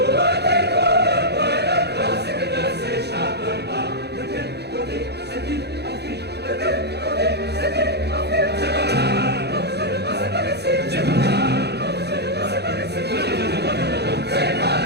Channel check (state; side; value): late; left; 0.48 ms